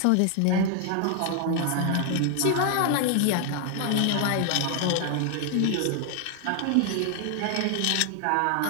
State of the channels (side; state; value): both; different; correlation 0.00